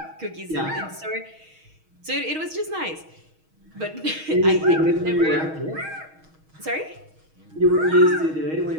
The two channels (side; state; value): left; late; 6.3 ms